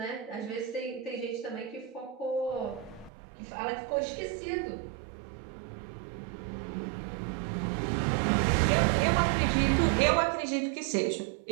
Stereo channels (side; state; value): left; drops out; at 3.1 s